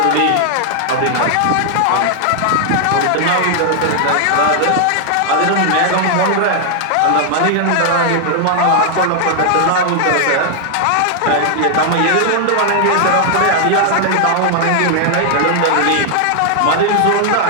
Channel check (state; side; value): different; both; correlation 0.00